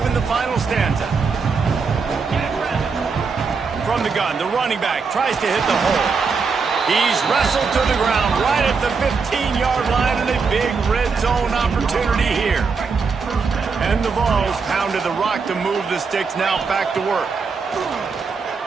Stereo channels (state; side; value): quieter; left; 5.1 dB